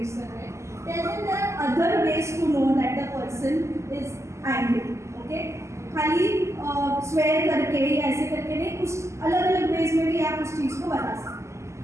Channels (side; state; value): left; late; 0.13 ms